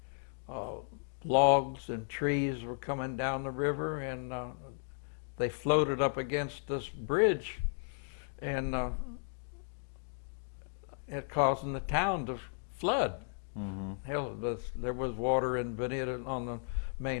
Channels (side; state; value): right; silent; digital silence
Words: logs and trees were coming down the river, and they floated up against this bridge, and it causing the town to flood. Hell, there was water in Bonita on the